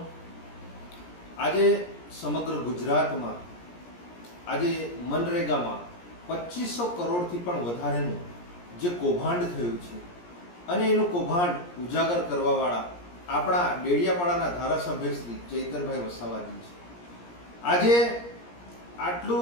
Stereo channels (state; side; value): late; right; 17 ms